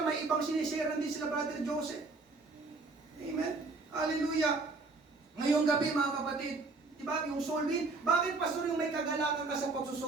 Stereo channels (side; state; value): left; quieter; 3.7 dB